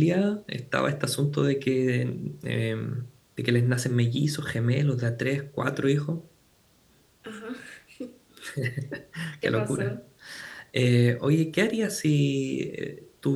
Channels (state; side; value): identical; both; correlation 1.00